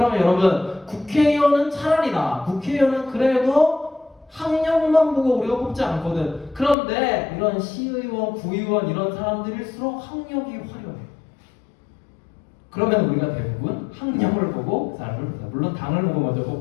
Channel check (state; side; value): drops out; right; at 6.8 s